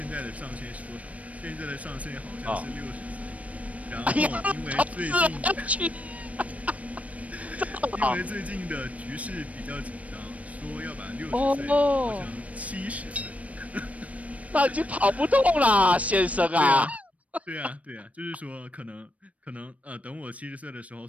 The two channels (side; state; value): left; late; 0.067 ms